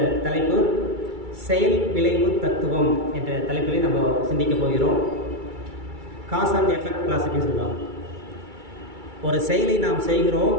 தலைப்பு செயல் விளைவு தத்துவம் என்ற தலைப்பிலே நம்ம சிந்திக்க போகிறோம். காஸ் அண்ட் எஃபெக்ட் கிளாசிக்னு சொல்லுவாங்க. ஒரு செயலை நாம் செய்கிறோம்,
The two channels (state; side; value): late; left; 2.3 ms